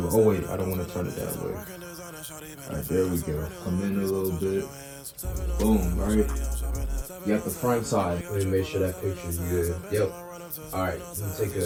Oh wait, I don't want to turn it that way. All right, there we go. Come in a little bit. Boom, right? You got the front side. Let me make sure that picture's good. Yep. All right, let me take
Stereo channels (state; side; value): identical; both; correlation 1.00